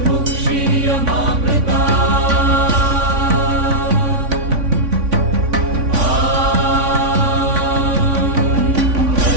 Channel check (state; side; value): late; left; 3.5 ms